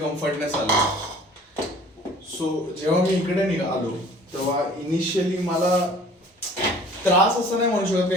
आला. सो जेव्हा मी इकडे आलो तेव्हा इनिशियली मला त्रास असं नाही म्हणू शकत,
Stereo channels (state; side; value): normal; both; correlation 0.50